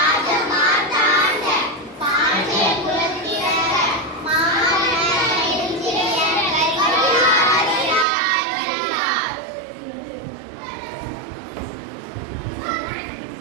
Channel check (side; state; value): left; drops out; at 8.1 s